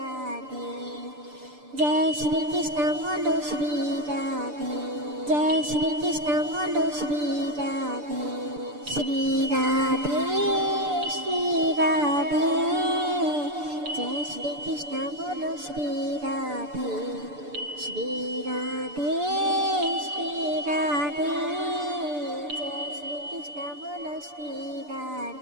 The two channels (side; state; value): left; late; 6.8 ms